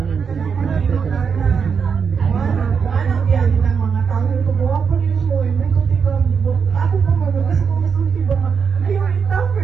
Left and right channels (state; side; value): quieter; left; 6.2 dB